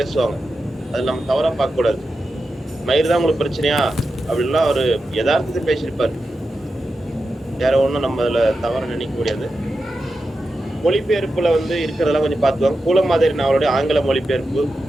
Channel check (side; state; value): both; normal; correlation 0.90